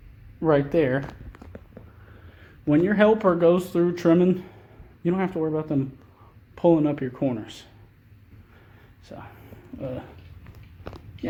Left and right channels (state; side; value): identical; both; correlation 1.00